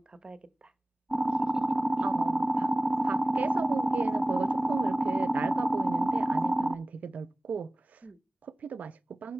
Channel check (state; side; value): normal; both; correlation 0.97